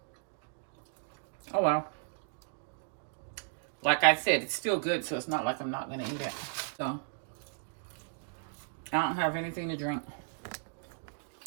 Oh well. Like I said, it's still good, so it's not like I'm not gonna eat it. So I don't have anything to drink.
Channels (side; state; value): left; silent; digital silence